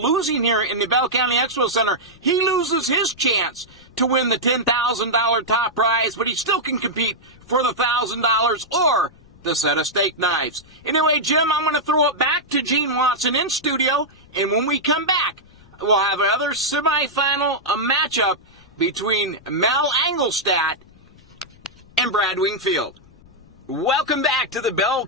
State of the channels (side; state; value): left; noise; rumble, 26 dB below the sound